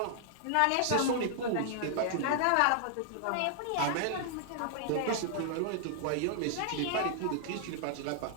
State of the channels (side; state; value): both; different; correlation -0.01